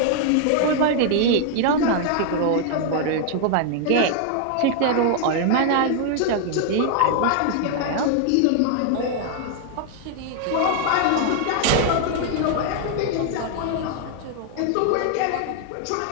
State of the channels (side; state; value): both; different; correlation 0.00